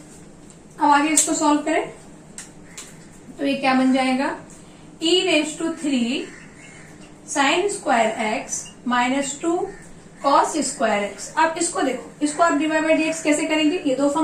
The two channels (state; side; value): identical; both; correlation 1.00